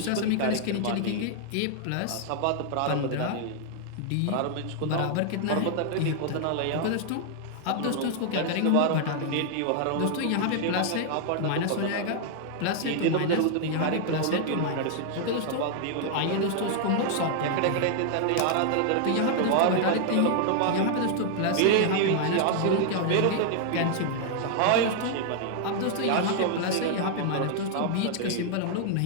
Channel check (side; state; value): both; different; correlation 0.00